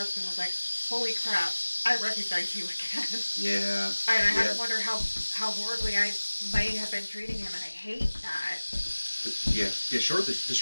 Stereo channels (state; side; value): inverted; both; correlation -1.00